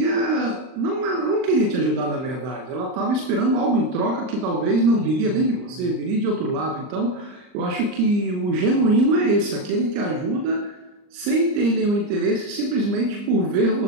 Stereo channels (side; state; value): left; late; 39 ms